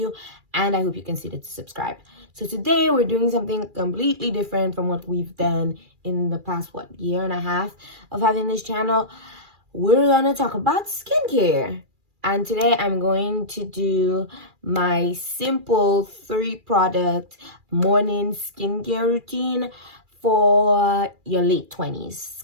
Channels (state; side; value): late; left; 2.4 ms